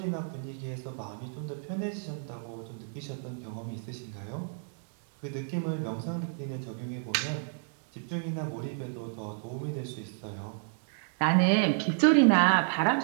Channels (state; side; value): silent; left; digital silence